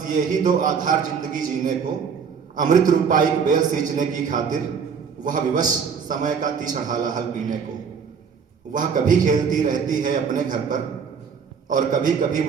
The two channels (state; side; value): quieter; left; 6.4 dB